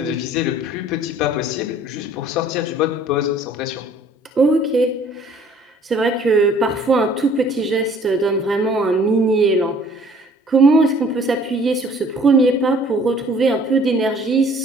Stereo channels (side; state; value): both; normal; correlation 0.55